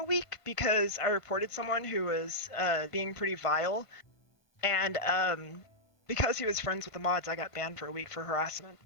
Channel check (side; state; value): right; late; 1.5 ms